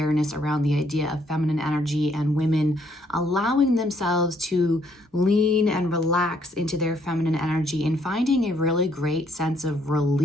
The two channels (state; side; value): normal; both; correlation 0.69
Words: around the idea of feminine energy and women allowing themselves to lean and relax into their feminine energy and finding a really great sense of